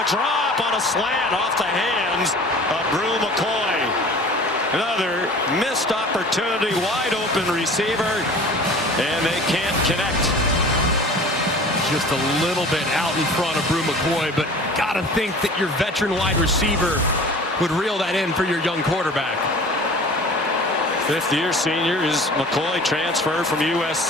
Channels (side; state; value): both; normal; correlation 0.43